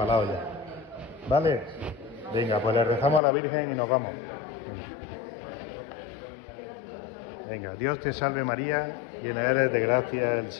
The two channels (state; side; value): drops out; right; at 3.2 s